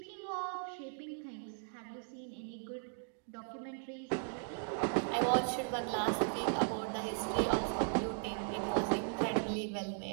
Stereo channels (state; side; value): silent; left; digital silence